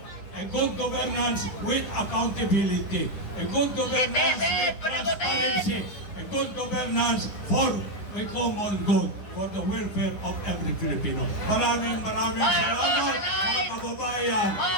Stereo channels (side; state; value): right; late; 9.8 ms